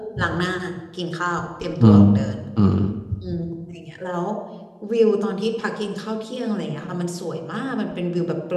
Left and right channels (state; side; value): identical; both; correlation 1.00